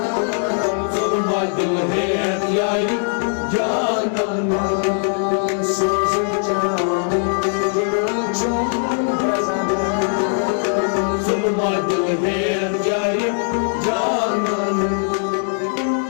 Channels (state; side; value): silent; right; 65 dB below the other